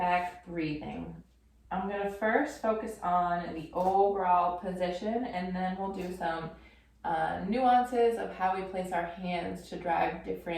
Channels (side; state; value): both; identical; correlation 1.00